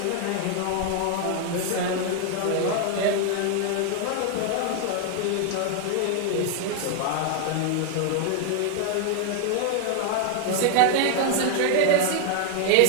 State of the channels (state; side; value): different; both; correlation 0.00